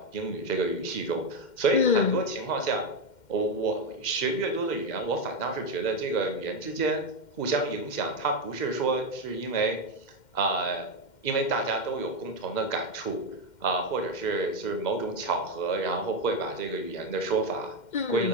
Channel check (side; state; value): right; late; 2.1 ms